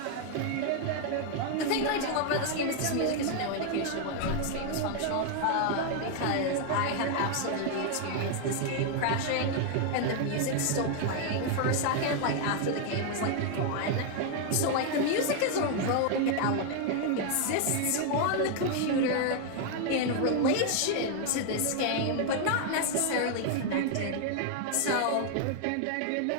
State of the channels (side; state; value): both; different; correlation 0.00